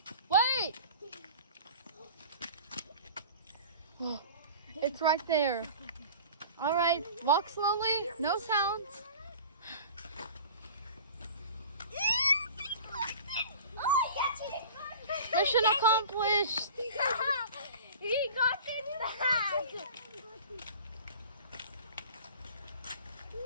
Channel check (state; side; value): inverted; both; correlation -0.40